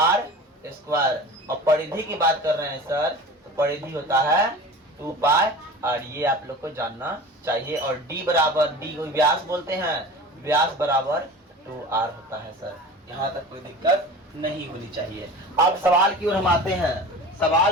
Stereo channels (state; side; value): normal; both; correlation 0.37